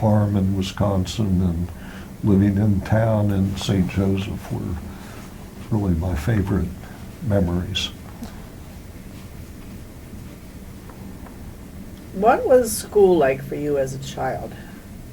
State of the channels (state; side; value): identical; both; correlation 1.00